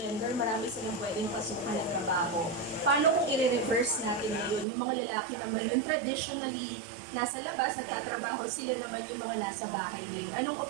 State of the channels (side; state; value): left; drops out; at 4.7 s